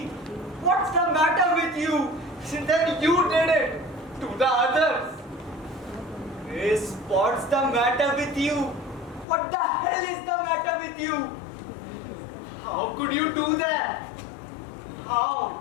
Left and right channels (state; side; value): drops out; right; at 9.2 s